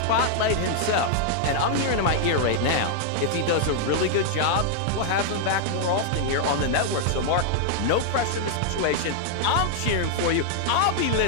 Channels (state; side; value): different; both; correlation -0.01